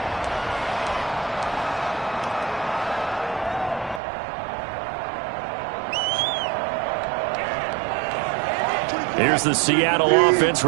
Here's the Seattle offense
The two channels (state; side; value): drops out; left; at 4.0 s